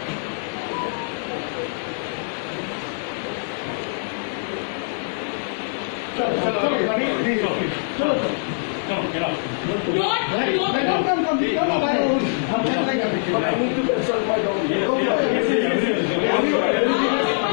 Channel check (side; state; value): right; silent; 63 dB below the other